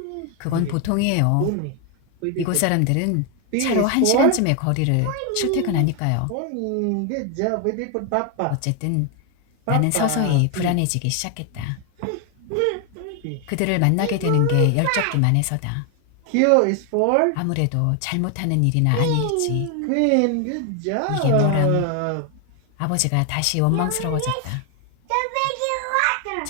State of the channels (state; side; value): different; both; correlation 0.01